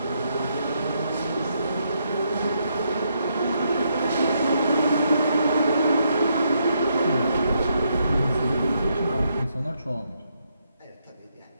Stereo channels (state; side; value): inverted; both; correlation -0.77